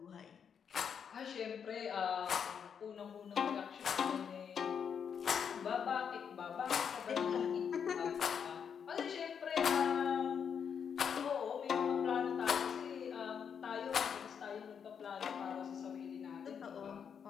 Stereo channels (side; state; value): right; quieter; 7.3 dB